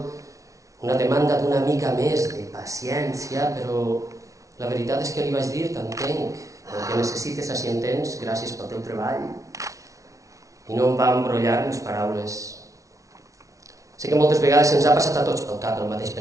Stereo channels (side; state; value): left; late; 0.16 ms